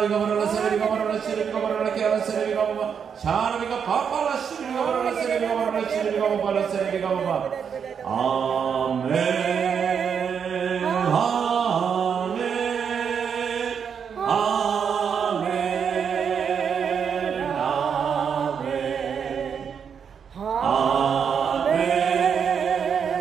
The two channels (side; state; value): left; quieter; 7.1 dB